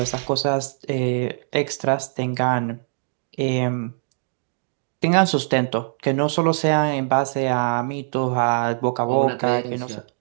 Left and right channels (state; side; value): silent; left; digital silence